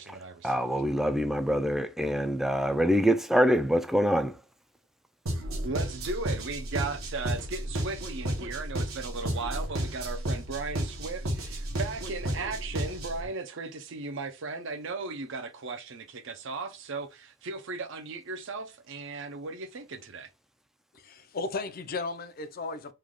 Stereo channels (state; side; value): normal; both; correlation 0.66